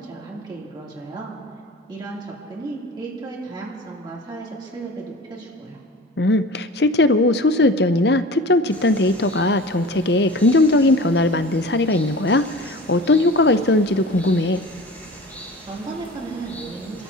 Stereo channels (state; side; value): normal; both; correlation 0.38